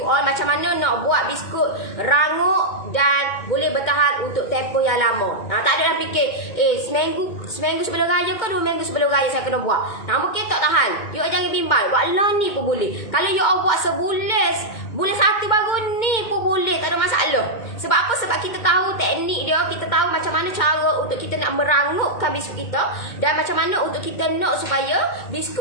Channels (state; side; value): late; right; 2.2 ms